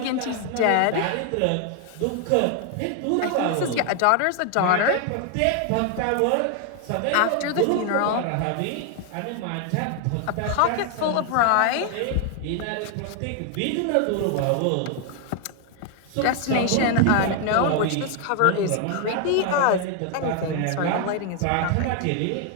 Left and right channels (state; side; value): different; both; correlation 0.00